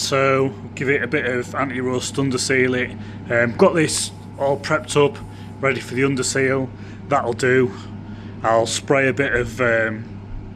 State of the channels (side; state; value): both; identical; correlation 1.00